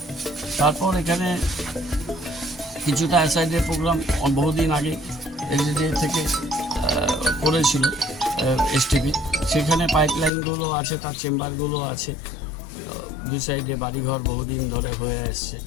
তারপর এখানে কিছুটা অ্যাসাইডের প্রোগ্রাম বহুদিন আগে এলজিডি থেকে করেছিল এসটিপি, সেখানে পাইপলাইনগুলো আছে, তার চেম্বারগুলো আছে, দুই সাইডে বাড়িঘর বহুদিন ধরে হয়ে আসছে।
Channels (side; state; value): right; drops out; at 10.3 s